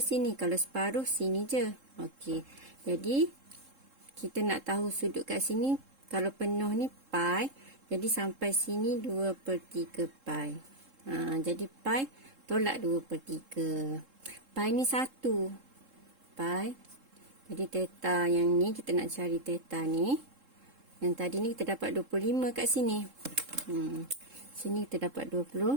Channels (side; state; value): left; late; 3.7 ms